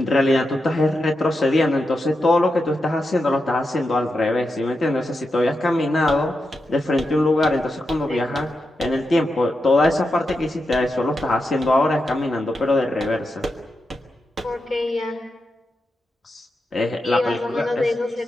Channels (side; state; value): both; normal; correlation 0.88